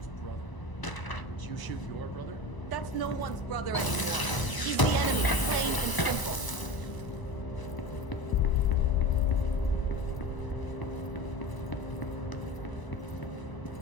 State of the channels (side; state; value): right; late; 1.0 ms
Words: brother. Did you shoot your brother? That's no one's brother anymore. He's the enemy, plain and simple.